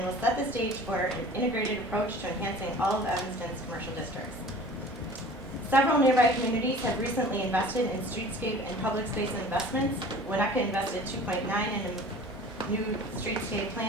will set the stage for an integrated approach to enhancing all of Evanston's commercial districts. Several nearby communities have recently invested in streetscape and public space investments. Winnetka invested $2.9 million in a new streetscape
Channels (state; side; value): normal; both; correlation 0.44